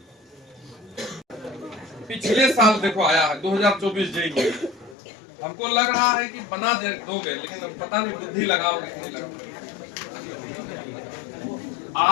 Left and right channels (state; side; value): drops out; right; at 5.0 s